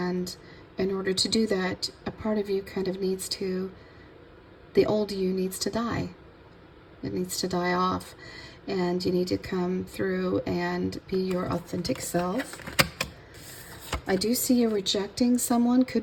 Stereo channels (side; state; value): both; identical; correlation 1.00